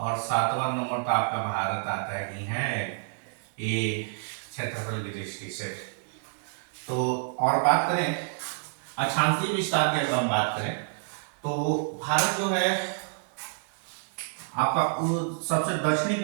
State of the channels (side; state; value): left; silent; 59 dB below the other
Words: 7वां नंबर पर आपका भारत आता ही है, ये क्षेत्रफल की दृष्टि से। तो और बात करें अक्षांशीय विस्तार की, अगर हम बात करें तो भारत जो है आपका सबसे दक्षिणी की